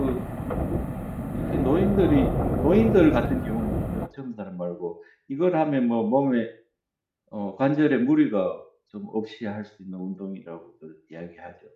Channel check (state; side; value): identical; both; correlation 1.00